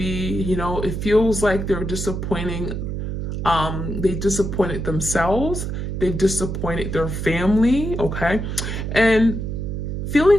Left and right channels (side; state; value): right; noise; hum, 4 dB below the sound